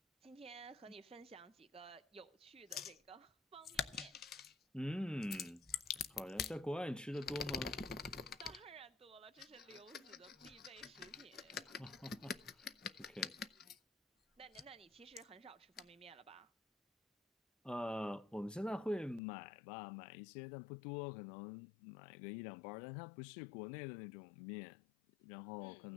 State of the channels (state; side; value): drops out; right; at 19.2 s